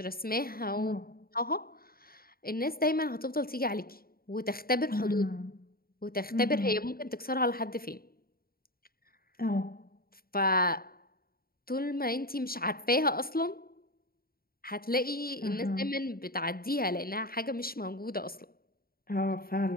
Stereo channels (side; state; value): right; late; 0.43 ms